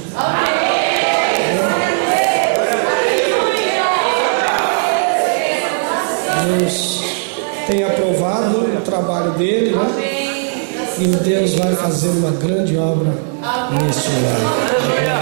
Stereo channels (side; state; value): left; silent; digital silence